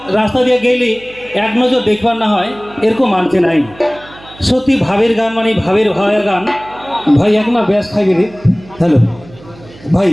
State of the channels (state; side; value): noise; right; hum, 22 dB below the sound